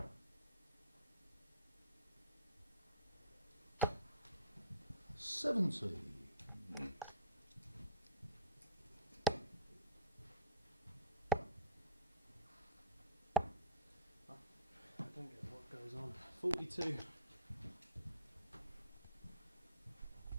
70. I don't get what goes on. 42.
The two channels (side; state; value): both; inverted; correlation -0.38